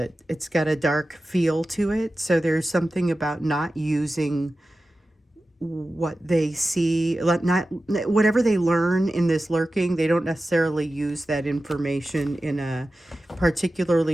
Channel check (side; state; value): both; normal; correlation 0.94